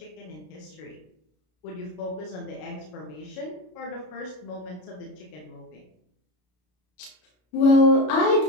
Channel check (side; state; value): right; late; 33 ms